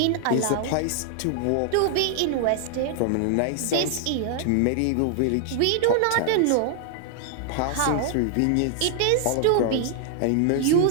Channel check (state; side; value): different; both; correlation 0.00